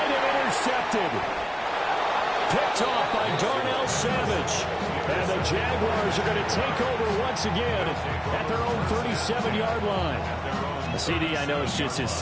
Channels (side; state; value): both; identical; correlation 1.00